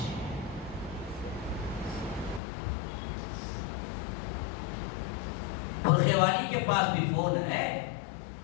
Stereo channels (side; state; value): right; drops out; at 2.4 s